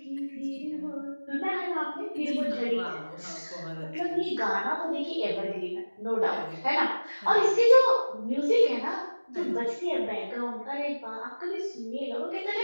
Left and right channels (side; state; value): both; inverted; correlation -1.00